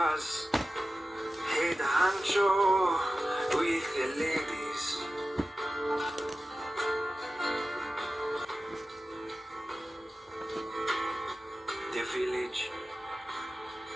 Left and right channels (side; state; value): both; normal; correlation 0.94